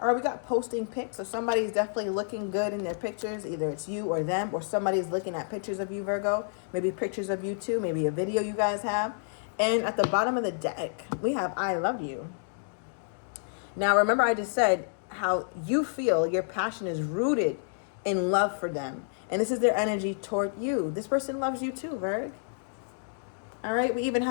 right, we got posting pics. So somebody's definitely looking good in their pictures. Either it's you or them, or somebody's looking at pictures of you, Virgo. Maybe pictures of you too. Maybe a video you guys have. And at the bottom of the deck, we have I love you. Now, remember I just said how you feel your passion is rooted in love for them. And this is their energy toward you. This person loves you too, Virg. All right, we even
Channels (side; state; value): right; silent; digital silence